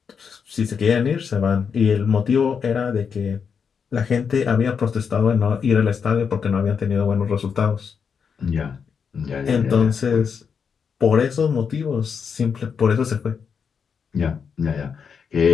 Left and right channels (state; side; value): quieter; right; 6.4 dB